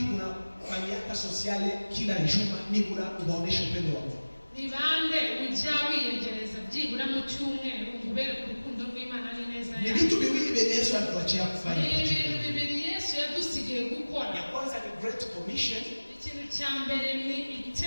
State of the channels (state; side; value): inverted; both; correlation -1.00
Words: unafanyaka sociale kila juma nibura ubaonesha upendo wa Mungu? Ni bande ujya wiyegereza byibura mu cyumweru ubere ku rukundo rw'Imana ari neza yawe. Ni vitu viwili vyenye Yesu alituachia kufanya. Ni bibiri Yesu yadusigiye gukora. Ya kwanza ni Great Commission. Ikintu cya mbere ni